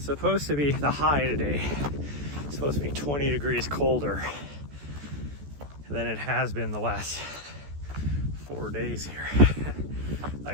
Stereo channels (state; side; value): late; left; 14 ms